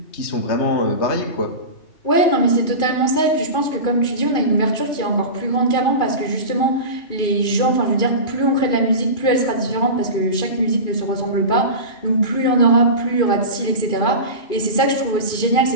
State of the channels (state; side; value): late; right; 2.5 ms